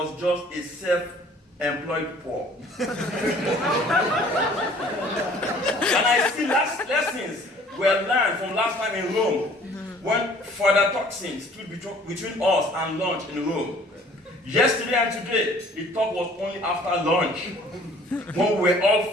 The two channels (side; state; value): both; normal; correlation 0.54